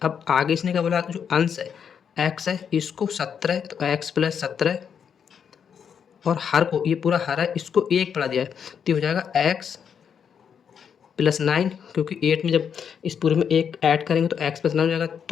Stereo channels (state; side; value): quieter; right; 7.4 dB